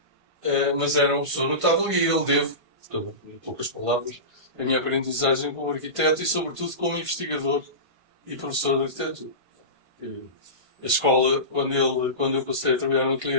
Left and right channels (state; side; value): late; left; 1.5 ms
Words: mas era uma pessoa notável e ele devo, portanto, em poucas palavras, a minha aprendizagem como arquiteto e, sobretudo, como investigador e professor de arquitetura. A escola, quando eu passei a trabalhar no ateliê